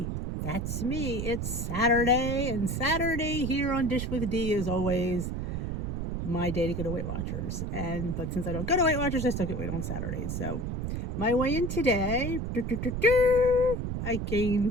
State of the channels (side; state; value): right; noise; rumble, 3 dB below the sound